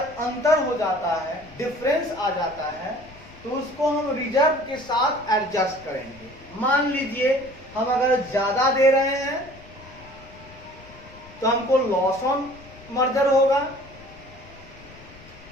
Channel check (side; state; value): left; noise; rumble, 21 dB below the sound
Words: हो जाता है, डिफरेंस आ जाता है, तो उसको हम रिजर्व के साथ एडजस्ट करेंगे। मान लीजिए हम अगर ज्यादा दे रहे हैं तो हमको लॉस ऑन मर्जर होगा,